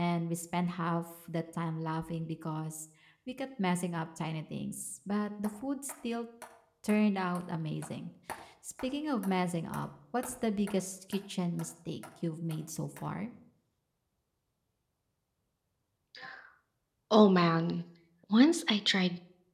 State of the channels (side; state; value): both; identical; correlation 1.00